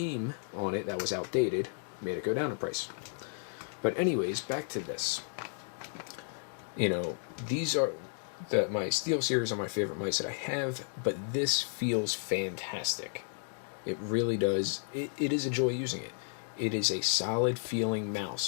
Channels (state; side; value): silent; right; 56 dB below the other